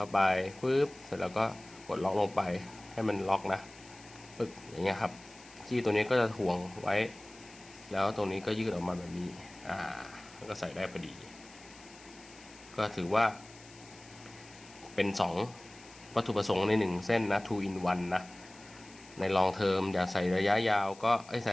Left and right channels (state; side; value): noise; left; hiss, 21 dB below the sound